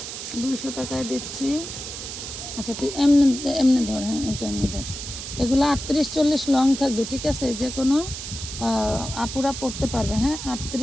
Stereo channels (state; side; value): noise; right; hiss, 8 dB below the sound